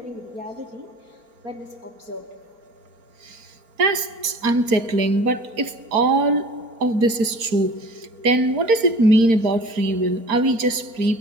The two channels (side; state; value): left; late; 4.4 ms